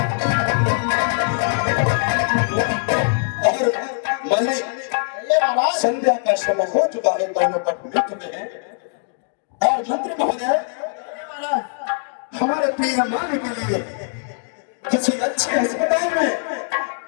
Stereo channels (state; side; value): silent; right; digital silence